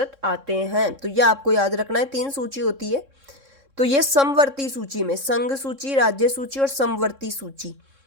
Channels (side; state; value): left; late; 3.6 ms